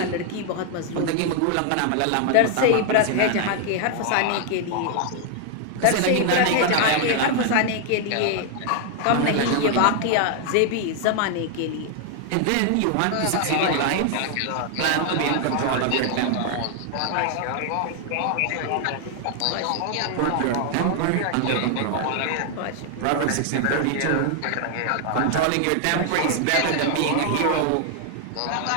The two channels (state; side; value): different; both; correlation 0.00